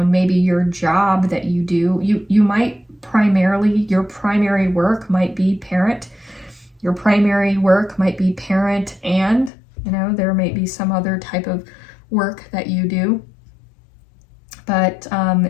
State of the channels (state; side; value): drops out; right; at 9.5 s